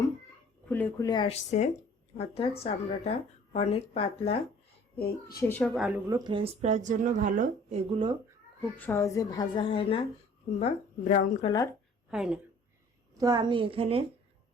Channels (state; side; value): normal; both; correlation 0.52